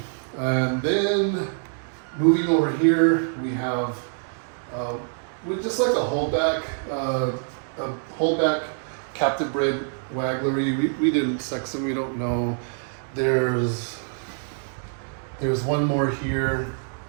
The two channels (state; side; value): silent; left; 62 dB below the other